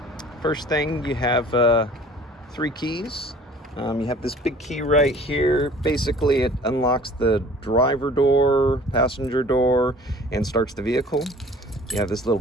First thing, you have 3 keys. You have this big key right here. Basically it unlocks the driver door, passenger door, and starts the vehicle. You have this little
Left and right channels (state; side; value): normal; both; correlation 0.49